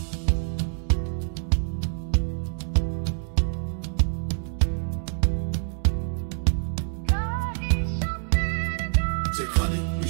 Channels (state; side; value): silent; left; digital silence